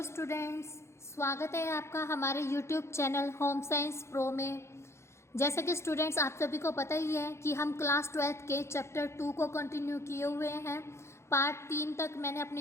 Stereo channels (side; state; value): right; late; 0.13 ms